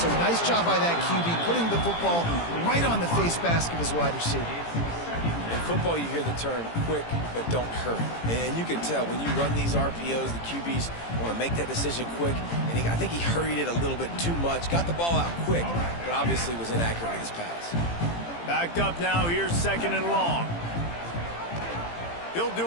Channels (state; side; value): late; right; 18 ms